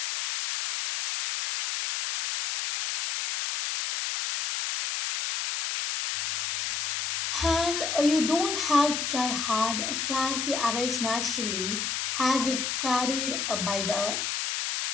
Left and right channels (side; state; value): left; noise; hiss, 1 dB below the sound